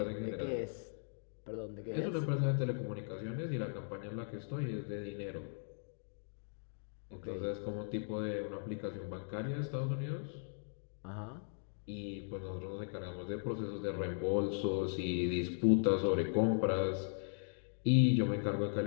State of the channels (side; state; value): right; silent; digital silence